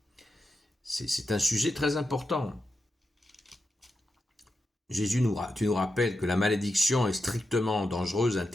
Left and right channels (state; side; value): normal; both; correlation 0.88